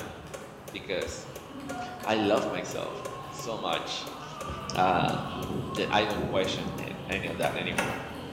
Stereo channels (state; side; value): identical; both; correlation 1.00